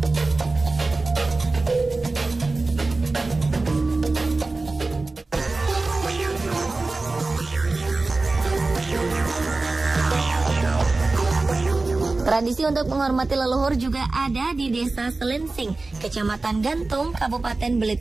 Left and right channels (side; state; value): left; quieter; 3.4 dB